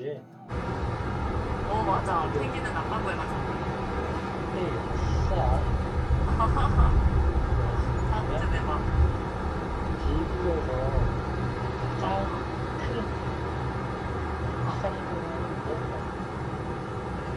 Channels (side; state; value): both; identical; correlation 1.00